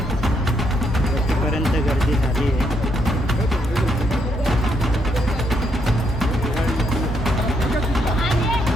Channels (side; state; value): both; normal; correlation 0.76